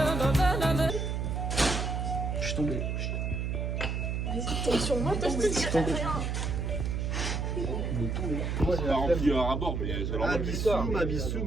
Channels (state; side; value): noise; right; hum, 1 dB below the sound